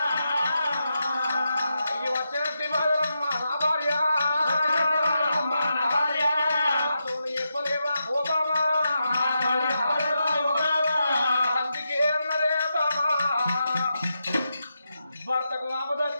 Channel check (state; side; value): inverted; both; correlation -0.86